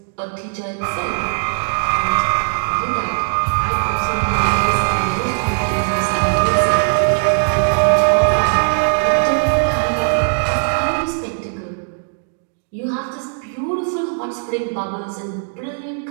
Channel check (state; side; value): silent; left; digital silence